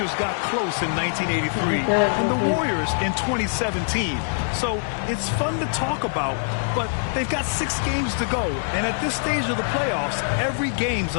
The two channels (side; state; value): right; silent; digital silence